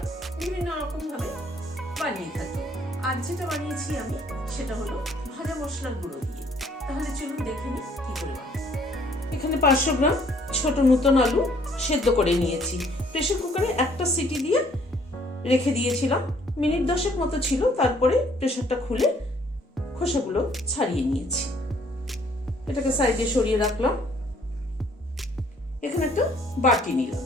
বিভিন্ন রকম ভাবে বানিয়ে থাকি। আজ যেটা বানিয়েছি আমি সেটা হলো ভাজা মশলার গুঁড়ো দিয়ে। তাহলে চলুন দেখে নিই কি করে বানাই। এখানে 500 গ্রাম ছোট নতুন আলু সেদ্ধ করে নিয়েছি। প্রেসার কুকারে একটা সিটি দিয়ে রেখে দিয়েছিলাম, মিনিট 10 মতো ছিল। তারপরে প্রেসারটা খুলে খোসাগুলো ছাড়িয়ে নিয়েছি। এটাকে সাইডে সরিয়ে রাখলাম। এখানে একটা বাটি নিলাম,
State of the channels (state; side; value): normal; both; correlation 0.62